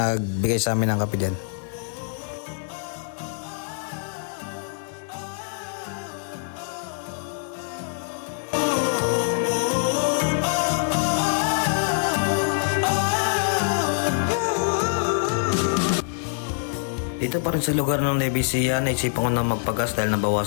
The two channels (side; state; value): right; silent; digital silence